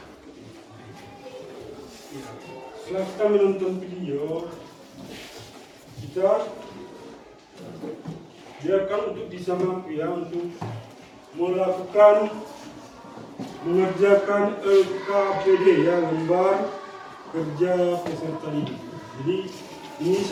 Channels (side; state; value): both; identical; correlation 1.00